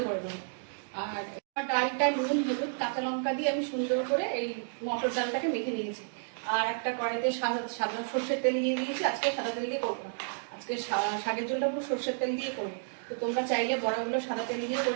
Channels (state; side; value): silent; left; digital silence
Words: করে নেবো। আর ডালটা নুন হলুদ কাঁচা লঙ্কা দিয়ে আমি সুন্দর করে এই মটর ডালটাকে মেখে নিয়েছি। আর একটা কড়াইতে সাদা সর্ষের তেল দিয়ে দিয়েছি। আজকে সাদা তেল দিয়ে করবো না, আজকে শাকের ঝোলটা পুরো সর্ষের তেল দিয়ে করবো। তো তোমরা চাইলে বড়াগুলো সাদা তেল দিয়ে করে